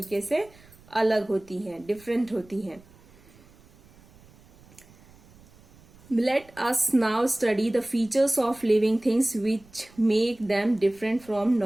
से अलग होती हैं, डिफरेंट होती हैं। Let us now study the features of living things which make them different from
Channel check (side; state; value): right; noise; rumble, 26 dB below the sound